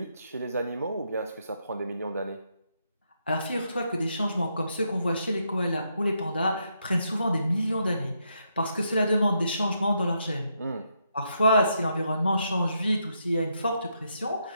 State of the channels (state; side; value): inverted; both; correlation -0.79